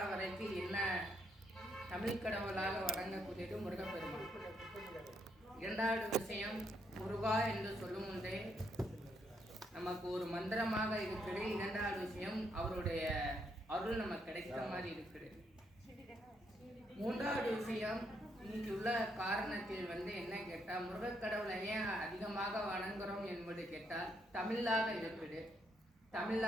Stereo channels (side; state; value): both; normal; correlation 0.75